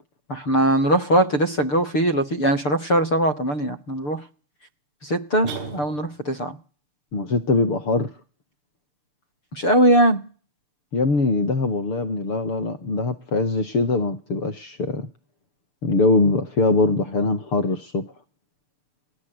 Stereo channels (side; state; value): right; late; 6.8 ms